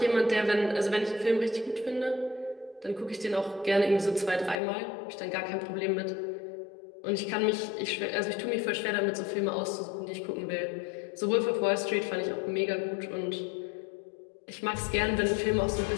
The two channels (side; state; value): right; drops out; at 4.5 s